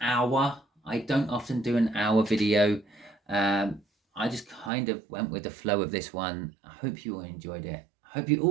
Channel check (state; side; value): drops out; left; at 4.7 s